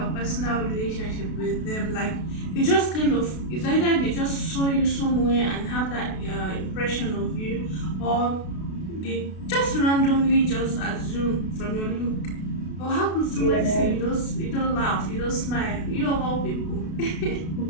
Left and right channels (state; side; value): late; right; 32 ms